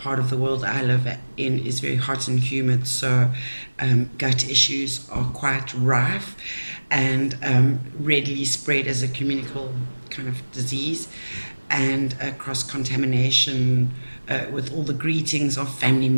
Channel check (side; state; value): both; inverted; correlation -1.00